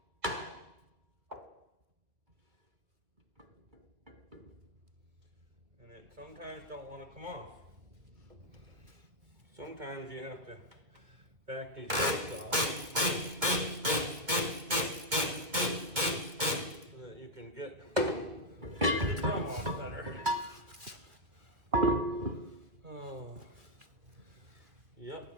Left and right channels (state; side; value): late; left; 2.4 ms